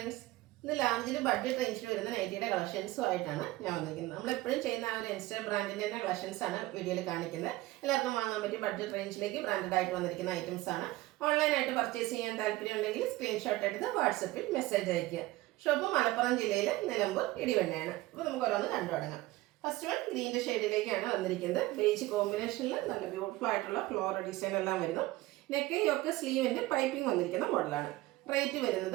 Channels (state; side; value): quieter; left; 18.4 dB